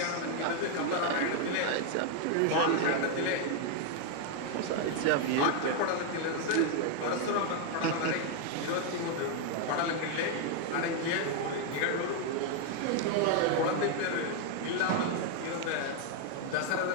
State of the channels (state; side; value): different; both; correlation 0.00